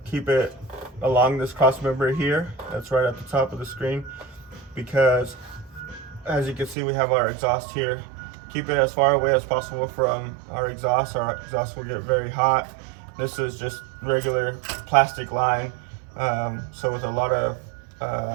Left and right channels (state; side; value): drops out; left; at 6.8 s